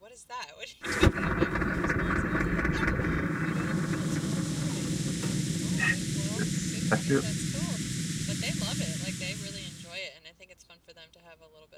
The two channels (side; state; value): both; identical; correlation 1.00